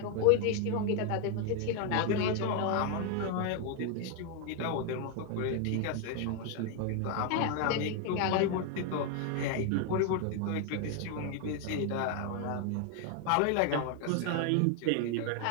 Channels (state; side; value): different; both; correlation 0.01